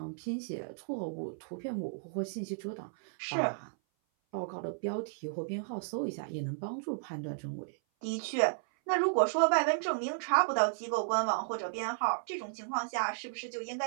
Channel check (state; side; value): silent; left; 55 dB below the other